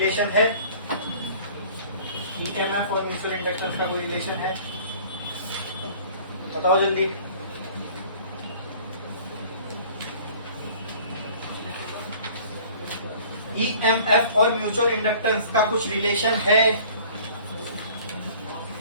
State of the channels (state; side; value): inverted; both; correlation -0.49